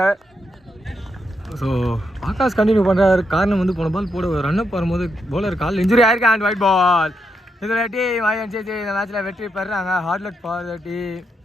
ஸோ ஆகாஷ் கண்டினியூ பண்ணுறாரு. காரணம் வந்து போன பால் போட ரன்அப் வரும்போது பவுலர் கால் இன்ஜுரி ஆயிருக்கு. And wide ball. இதில் டீம் INCC இந்த மேட்ச்சில் வெற்றி பெறுறாங்க. Hard luck for the team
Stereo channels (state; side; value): normal; both; correlation 0.81